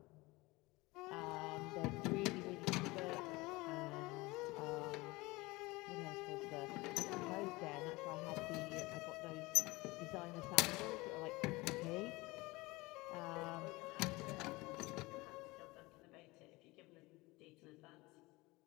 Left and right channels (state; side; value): quieter; right; 22.3 dB